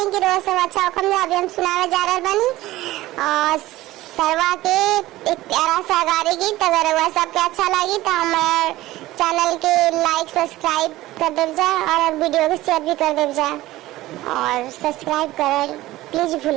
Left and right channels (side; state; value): left; quieter; 16.9 dB